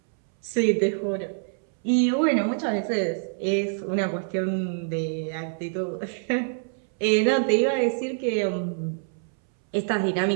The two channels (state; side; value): silent; left; 61 dB below the other